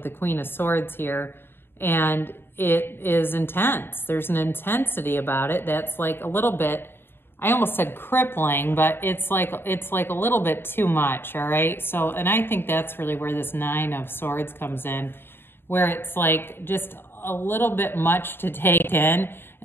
the Queen of Swords here. And it is intense. There's an intensity about it that's like a little bit, I almost said crippling, but it's like a little bit too much, all right? So, and I think that's really where this Nine of Swords comes in, where it's like just a little bit much to take in,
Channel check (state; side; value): late; right; 0.11 ms